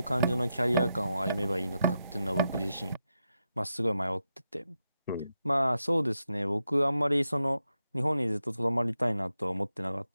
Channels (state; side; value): inverted; both; correlation -0.86